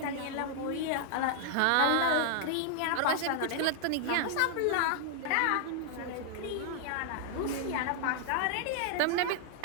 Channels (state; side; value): different; both; correlation -0.01